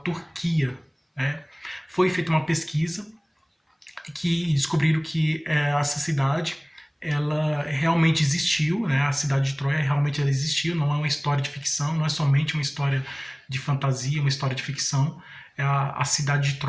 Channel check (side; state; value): both; identical; correlation 1.00